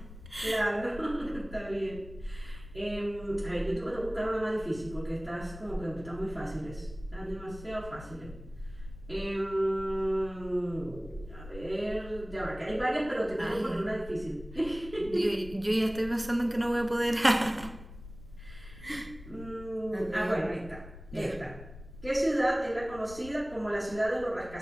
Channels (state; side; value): noise; left; rumble, 15 dB below the sound